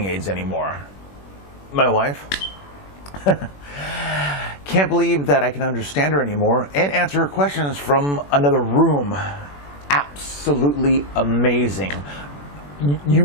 aids anymore. My wife can't believe that I can understand her anymore and answer her questions from another room. Absolutely amazing. You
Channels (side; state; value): right; late; 21 ms